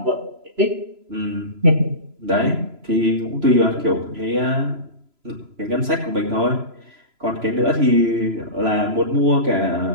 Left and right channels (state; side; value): late; left; 3.0 ms